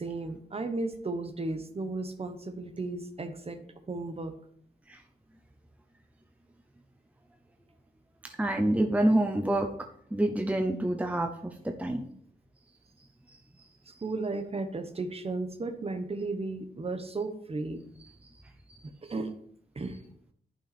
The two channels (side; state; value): both; normal; correlation 0.86